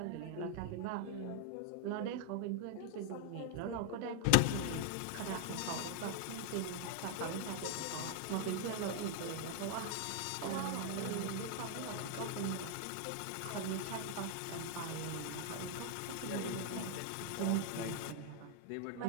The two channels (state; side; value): different; both; correlation 0.00